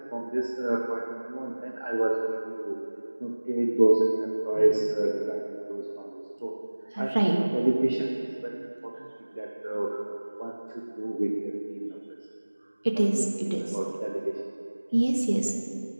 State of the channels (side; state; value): both; inverted; correlation -1.00